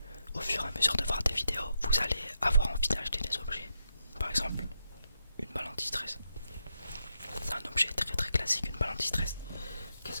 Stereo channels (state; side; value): inverted; both; correlation -0.84